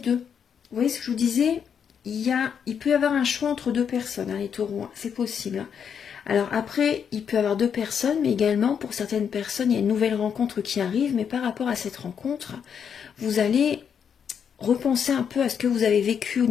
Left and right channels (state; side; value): quieter; right; 7.5 dB